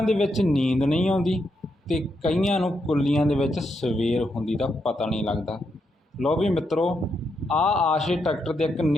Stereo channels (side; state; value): both; normal; correlation 0.81